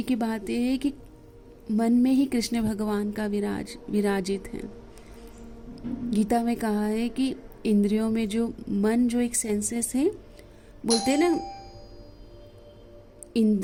की बात यह है कि मन में ही कृष्ण भगवान का विराजित है। गीता में कहा है कि इंद्रियों में जो मन, जो एक सेंसेस है, बोलते हैं ना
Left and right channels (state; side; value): identical; both; correlation 1.00